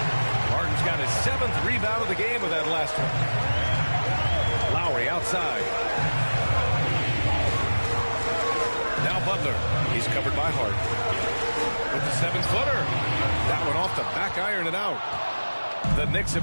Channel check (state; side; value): inverted; both; correlation -1.00